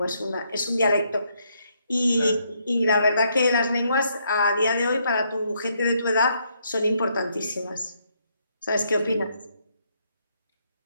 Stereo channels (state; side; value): inverted; both; correlation -0.74